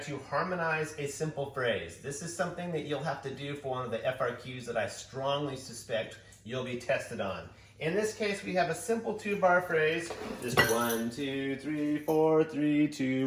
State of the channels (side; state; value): both; identical; correlation 1.00